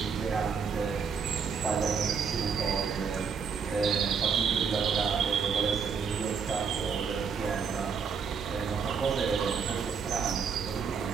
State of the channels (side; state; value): left; quieter; 6.0 dB